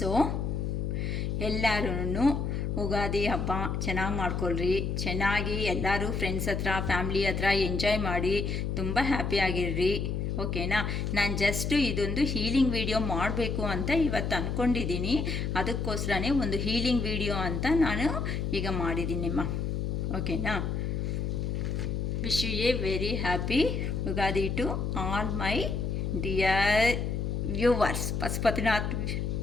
ಎಲ್ಲರೂ ಉಗಾದಿ ಹಬ್ಬ ಚೆನ್ನಾಗಿ ಮಾಡ್ಕೊಳ್ರಿ, ಚೆನ್ನಾಗಿ ಎಲ್ಲರೂ ಫ್ರೆಂಡ್ಸ್ ಹತ್ರ ಫ್ಯಾಮ್ಲಿ ಹತ್ರ ಎಂಜಾಯ್ ಮಾಡಿ ತುಂಬ ಹ್ಯಾಪಿಯಾಗಿರ್ರಿ. ಓಕೆನಾ? ನಾನು ಜಸ್ಟು ಇದೊಂದು ಹೀಲಿಂಗ್ ವಿಡಿಯೋ ಮಾಡಬೇಕು ಅಂತ ಇವತ್ತು ಅಂದ್ಕೊಂಡಿದ್ದೀನಿ. ಅದಕ್ಕೋಸ್ಕರನೇ ಒಂದು ಹೀಲಿಂಗ್ ವಿಡಿಯೋ ಅಂತ ನಾನು ಈಗ ಮಾಡಿದ್ದೀನಿಮ್ಮ. ಓಕೆನಾ? Wish you a very happy Ugadi to all my dear viewers, Pashupatinath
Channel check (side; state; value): left; noise; hum, 1 dB below the sound